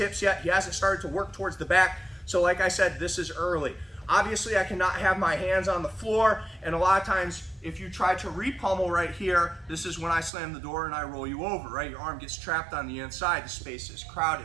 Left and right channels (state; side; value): drops out; left; at 10.3 s